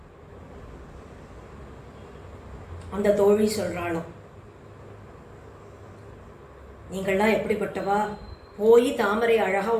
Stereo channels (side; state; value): both; identical; correlation 1.00